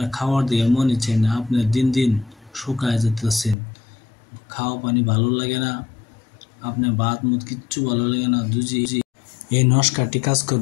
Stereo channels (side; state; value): right; drops out; at 3.6 s